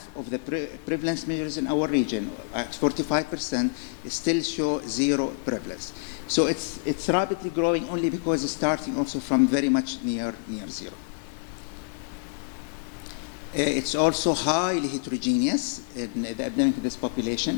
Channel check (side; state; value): right; quieter; 33.2 dB